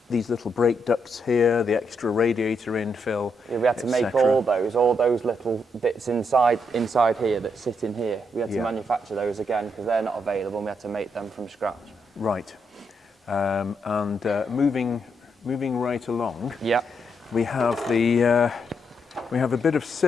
these little brake ducts here, the extra radiator infill. Yeah, we had to make all those little bits inside here that sit in here. We had to manufacture those again because they're not available. And we had to make them from scratch. Right. And moving right along. Yeah. We have the we have a bit of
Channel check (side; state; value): both; normal; correlation 0.79